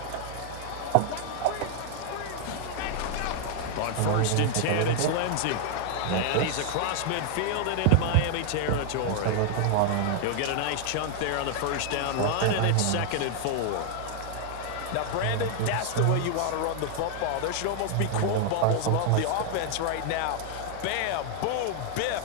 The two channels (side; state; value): both; different; correlation 0.00